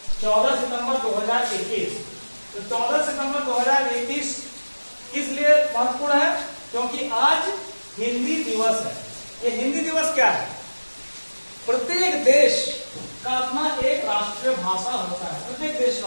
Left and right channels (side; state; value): both; inverted; correlation -1.00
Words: 14 सितंबर 2021। तो 14 सितंबर 2021 किस लिए महत्वपूर्ण है? क्योंकि आज हिंदी दिवस है। ये हिंदी दिवस क्या है? प्रत्येक देश का अपना एक राष्ट्रीय भाषा होता है, प्रत्येक देश का